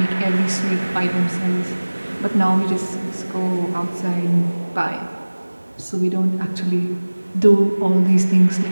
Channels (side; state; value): both; inverted; correlation -1.00